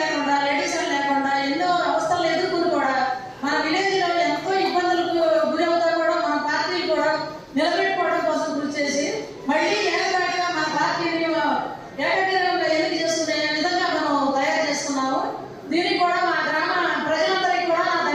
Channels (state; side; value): identical; both; correlation 1.00